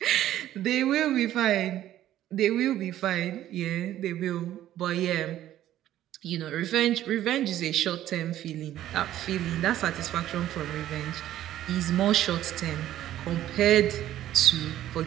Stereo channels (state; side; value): quieter; left; 12.8 dB